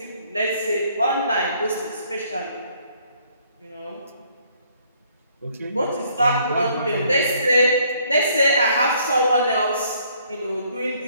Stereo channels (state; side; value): inverted; both; correlation -0.64